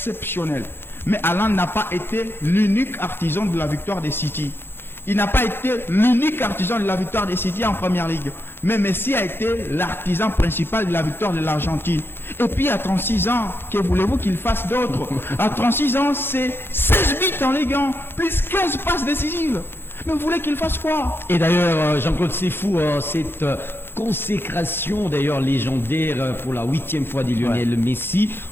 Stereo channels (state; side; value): late; right; 0.11 ms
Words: Mais Haaland n'a pas été l'unique artisan de la victoire des City. Il n'a pas été l'unique artisan de la victoire des City en Première Ligue. Mais Messi a été l'artisan principal de la victoire de l'Argentine. Et puis à 36 ans, que voulez-vous qu'il fasse d'autre? À 36 ans, c'est 16 buts en Ligue 1, plus 15 passes décisives. Mais vous voulez qu'il fasse quoi? Et d'ailleurs, Jean-Claude, c'est fou, cette consécration d'ailleurs légendaire pour la 8e fois de Lionel Messi